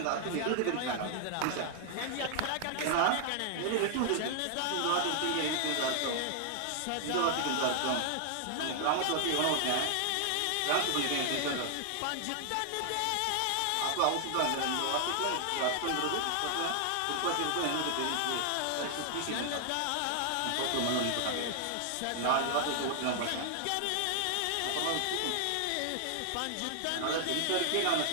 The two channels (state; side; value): different; both; correlation 0.00